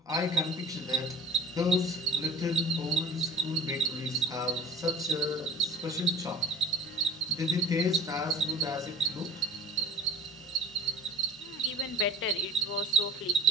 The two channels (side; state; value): both; normal; correlation 0.43